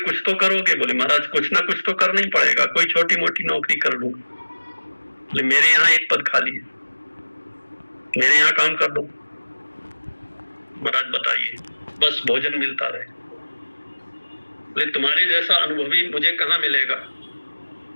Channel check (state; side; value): inverted; both; correlation -1.00